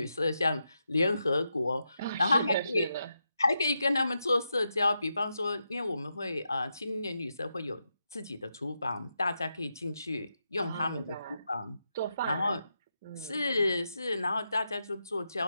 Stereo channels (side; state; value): both; inverted; correlation -0.86